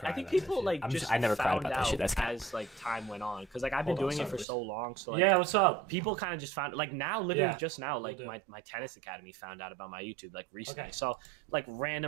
I think people like I never cried about that shit. That's as like time went on, because like I've been doing it for so long. So like, yeah, what's up? People kind of just found like now, literally just now, like my tennis academy found out about my YouTube like recently. So like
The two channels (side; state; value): left; drops out; at 4.5 s